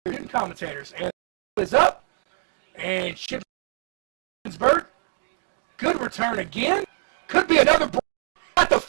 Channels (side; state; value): left; silent; digital silence